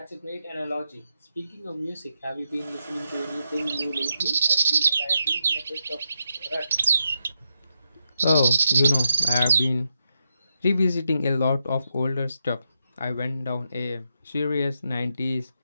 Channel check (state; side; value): inverted; both; correlation -0.84